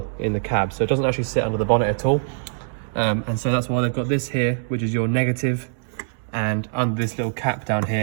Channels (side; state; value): left; silent; digital silence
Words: in the cab, so it doesn't actually sit under the bonnet at all. And so that's why they've got this here, which is your negative, and under this little cap down